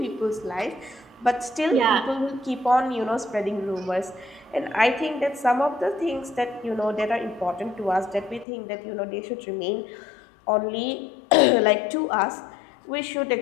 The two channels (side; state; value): right; drops out; at 8.5 s